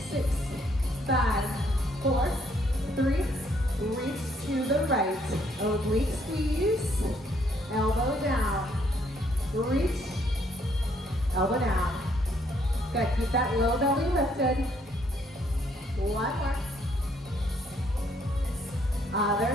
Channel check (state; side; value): normal; both; correlation 0.68